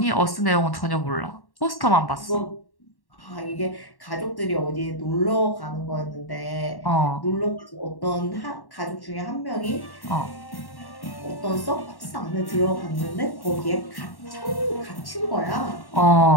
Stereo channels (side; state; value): right; late; 1.1 ms